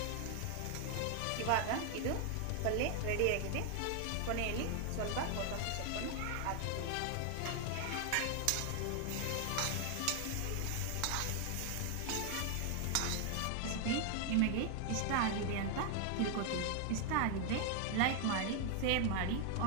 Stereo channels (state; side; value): different; both; correlation 0.00